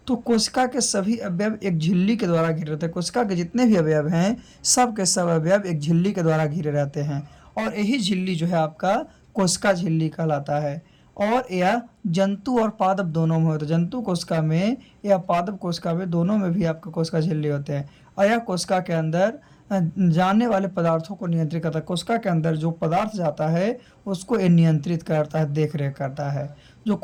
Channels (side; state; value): both; identical; correlation 1.00